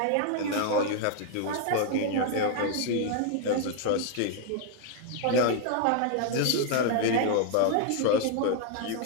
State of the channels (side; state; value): both; different; correlation 0.00